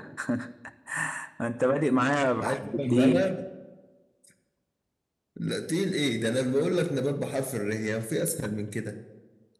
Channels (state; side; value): identical; both; correlation 1.00